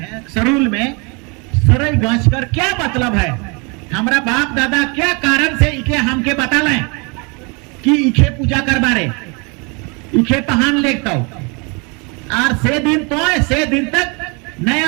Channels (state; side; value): quieter; left; 31.4 dB